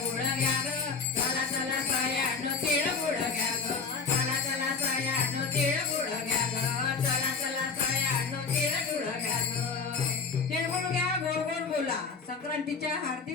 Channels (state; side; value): quieter; right; 5.0 dB